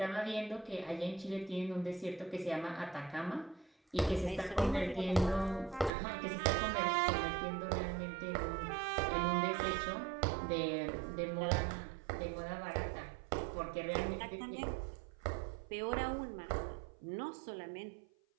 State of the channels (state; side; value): drops out; left; at 5.9 s